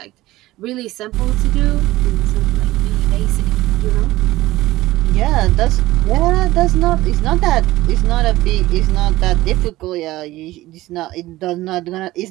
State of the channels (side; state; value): left; quieter; 17.3 dB